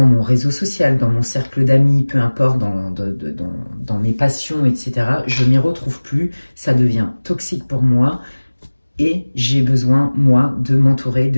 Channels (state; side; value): inverted; both; correlation -1.00